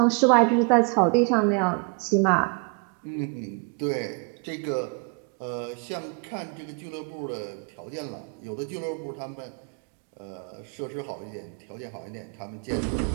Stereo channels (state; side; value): quieter; left; 35.3 dB